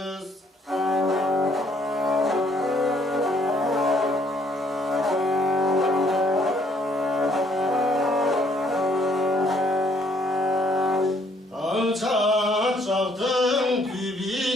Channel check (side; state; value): both; normal; correlation 0.65